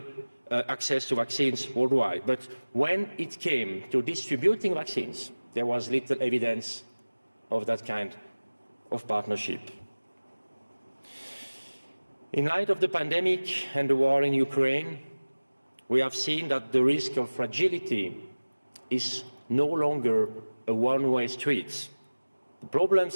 access to vaccines worldwide. But when it came to distributing vaccines, there was little evidence of that kind of partnership. In light of the pandemic and the war in Ukraine, we have seen that the risk of fragility is no longer a one-way street. The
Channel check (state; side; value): inverted; both; correlation -1.00